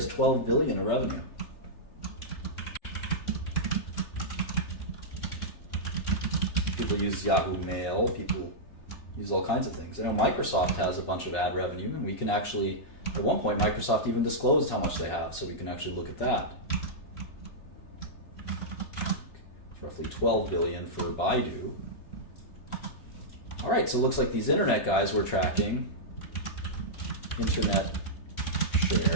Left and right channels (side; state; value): right; late; 3.3 ms